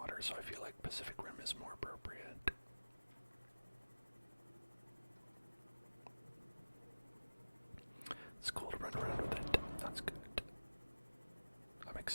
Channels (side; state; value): both; inverted; correlation -1.00